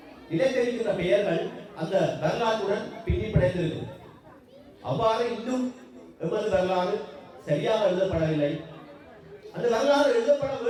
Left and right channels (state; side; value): identical; both; correlation 1.00